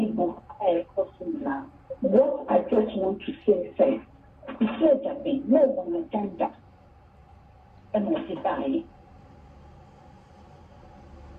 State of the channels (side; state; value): both; identical; correlation 1.00